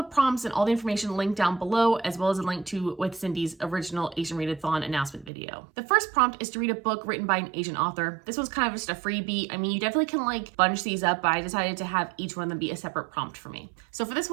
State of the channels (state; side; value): drops out; left; at 5.3 s